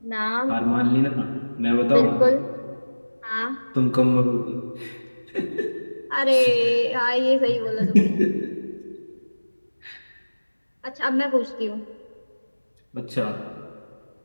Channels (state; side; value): inverted; both; correlation -1.00